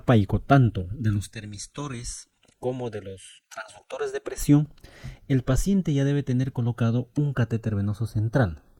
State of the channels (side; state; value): both; identical; correlation 1.00